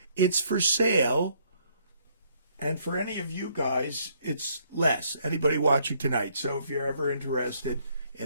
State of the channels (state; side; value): inverted; both; correlation -0.68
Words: It's for sale. And for any of you guys, it's less. Anybody watching tonight. So if you're ever interested